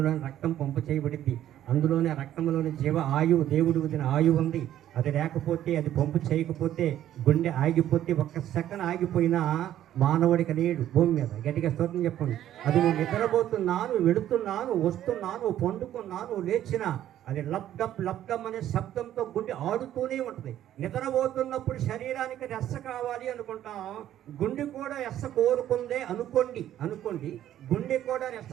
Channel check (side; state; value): left; quieter; 11.9 dB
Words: రక్తం పంపు చేయబడింది, అందులోనే రక్తంలోని జీవ ఆయువు, దేవుడు వదిన ఆయువు ఉంది. అది లేకపోతే, అది పంపు చేయకపోతే, గుండె ఆగిపోతే, ఒక్క సెకండ్ ఆగిపోయినా మానవుడికి లేడు భూమి మీద. గట్టిగా స్తోత్రం చెప్పండి. అది నువ్వు నిద్రపోతున్నాను, వెళుతున్నాను, వస్తున్నాను, పండుకున్నాను, లేచినా అది లబ్డప్ అనే శబ్దంతో గుండె ఆడుతూనే ఉంటుంది. నిద్రపోతున్నప్పుడు శరీరానికి రెస్స కావాలి అనుకుంటాం, గుండె కూడా రెస్స కోరుకుందే అనుకోండి గుండె కూడా రెస్స